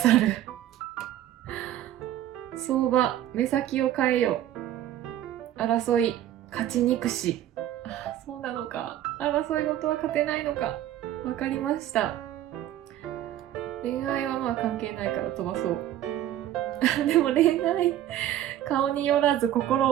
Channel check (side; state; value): left; quieter; 12.3 dB